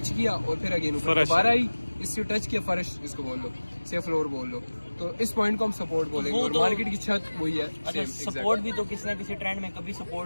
किया और फिर अगेन ऊपर दोबारा आई, इससे टच किया फर्श इसको बोल लो, से फ्लोर बोल लो, तो इस पॉइंट को हम सपोर्ट बोलेंगे। और मार्केट की छत वही है। अच्छा, सपोर्ट भी तो किसी ना किसी ट्रेंड में कभी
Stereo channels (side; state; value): both; inverted; correlation -1.00